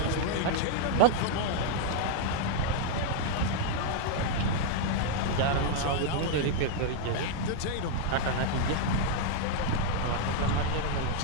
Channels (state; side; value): different; both; correlation 0.00